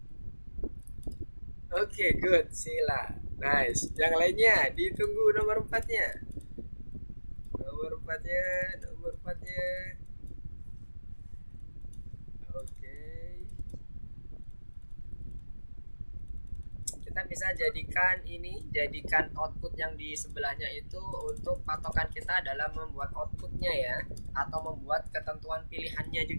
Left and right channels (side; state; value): both; inverted; correlation -1.00